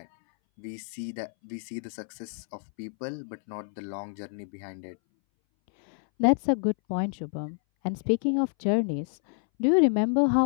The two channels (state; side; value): silent; right; 59 dB below the other